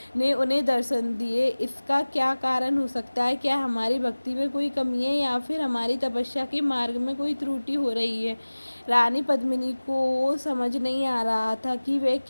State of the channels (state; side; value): inverted; both; correlation -1.00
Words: ने उन्हें दर्शन दिए। इसका क्या कारण हो सकता है? क्या हमारी भक्ति में कोई कमी है या फिर हमारी तपस्या के मार्ग में कोई त्रुटि हो रही है? रानी पद्मिनी को समझ नहीं आ रहा था कि वे